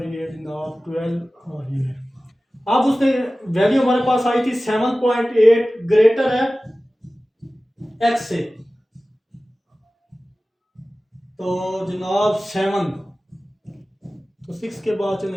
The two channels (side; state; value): both; normal; correlation 0.96